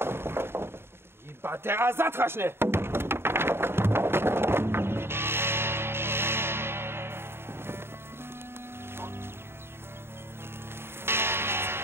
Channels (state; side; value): late; left; 0.11 ms